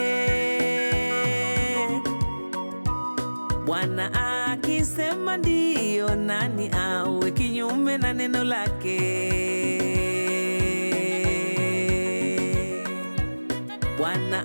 Bwana akisema ndiyo, nani awe kinyume na neno lake? Bwana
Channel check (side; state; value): both; inverted; correlation -1.00